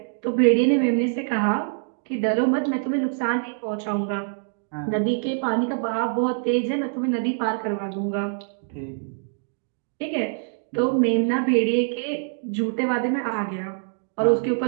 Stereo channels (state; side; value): silent; left; digital silence